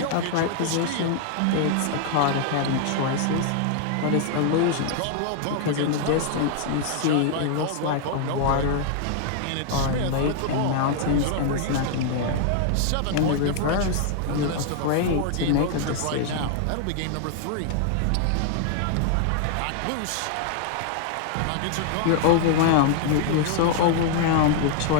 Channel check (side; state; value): both; different; correlation 0.00